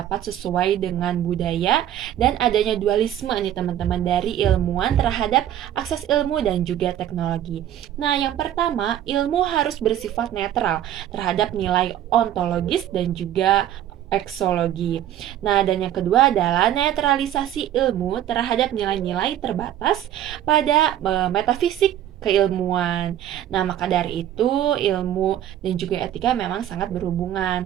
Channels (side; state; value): left; quieter; 11.4 dB